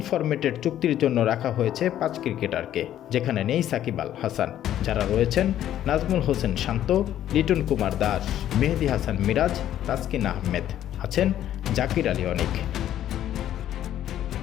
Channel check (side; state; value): right; quieter; 11.6 dB